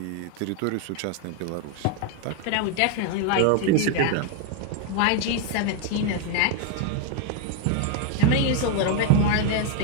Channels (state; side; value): different; both; correlation 0.01